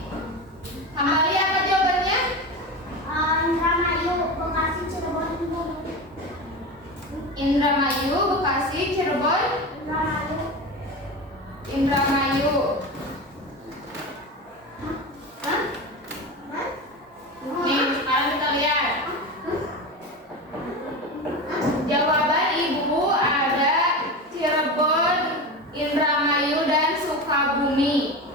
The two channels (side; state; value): both; normal; correlation 0.25